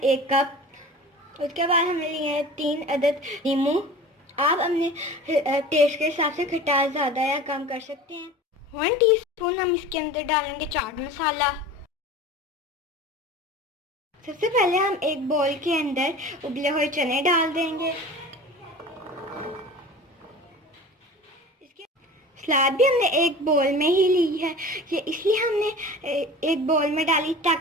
1 कप। उसके बाद हमने लिए हैं 3 अदद नींबू। आप अपने टेस्ट के हिसाब से खटास ज़्यादा या कम कर सकते हैं। 1 टीस्पून हम इसके अंदर डालेंगे चाट मसाला। सबसे पहले हम एक बोल के अंदर उबले हुए चने डाल देंगे। इसके सलाद भी हमने एक बोल में ही ली है। ये इसलिए हमने एक बोल में डाली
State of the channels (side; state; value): both; normal; correlation 0.38